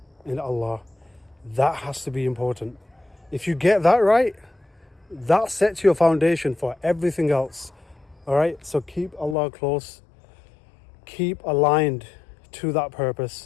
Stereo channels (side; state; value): right; drops out; at 9.3 s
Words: in Allah, that has to be important. If you get that right, that sets your foundation for everything else. All right, so keep Allah close, keep aligned to that